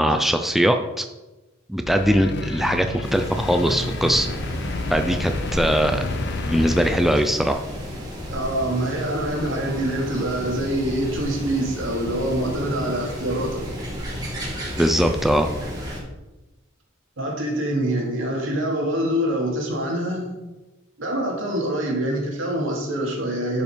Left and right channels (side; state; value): both; normal; correlation 0.67